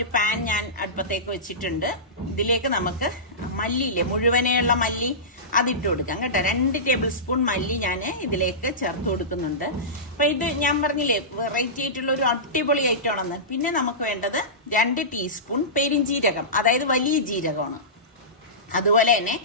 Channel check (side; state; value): both; normal; correlation -0.19